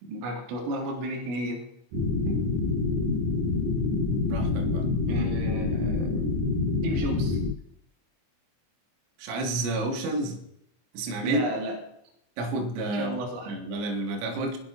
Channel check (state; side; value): late; left; 25 ms